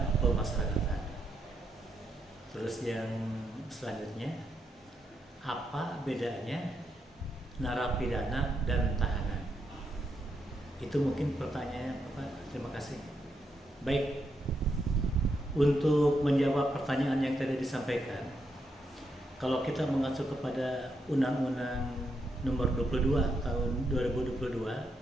pemasyarakatan? Terus yang selanjutnya, apa bedanya narapidana dan tahanan? Itu mungkin pertanyaannya, Bapak. Terima kasih. Baik, untuk menjawab pertanyaan yang tadi disampaikan, kalau kita mengacu kepada Undang-Undang Nomor 22 Tahun 2022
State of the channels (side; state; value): both; normal; correlation 0.80